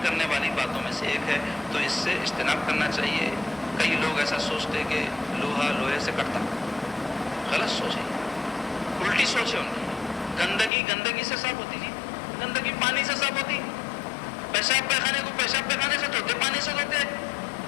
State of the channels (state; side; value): drops out; right; at 10.7 s